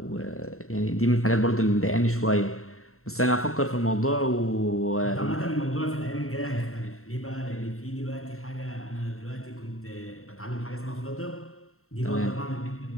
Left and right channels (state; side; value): late; right; 0.63 ms